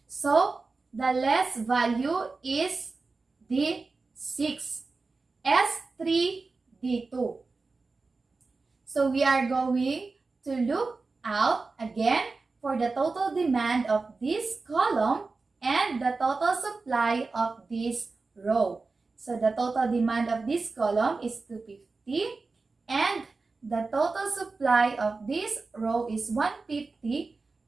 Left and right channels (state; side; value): quieter; left; 3.9 dB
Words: So, the less value is the 6, S3, D2. So, we are going to look out again for the total demand of this column and the total supply of this row. So, the total demand of this column is 250 and the total supply of this row is 150.